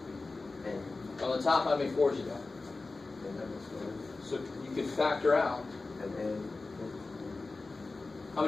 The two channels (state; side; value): quieter; right; 3.6 dB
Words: N. On the top, how many 4s you got? And that was 1. So, you can factor out. And then... How